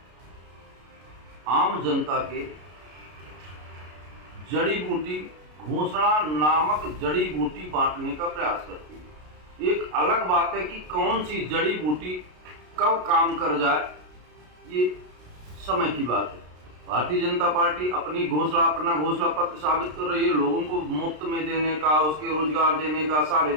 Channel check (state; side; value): late; left; 33 ms